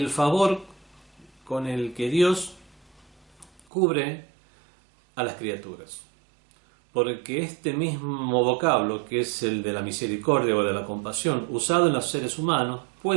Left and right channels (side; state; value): left; drops out; at 3.6 s